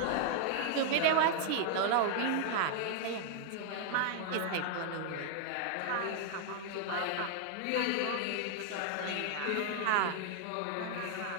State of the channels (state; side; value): different; both; correlation 0.00